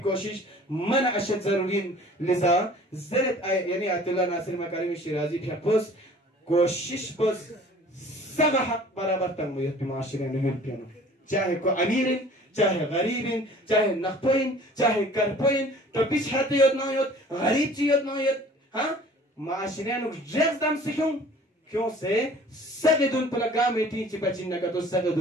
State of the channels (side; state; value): both; normal; correlation 0.49